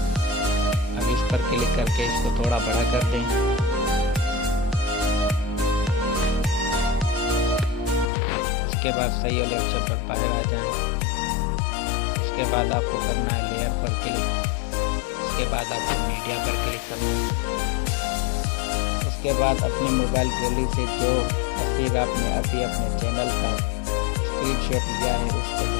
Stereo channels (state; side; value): drops out; right; at 8.1 s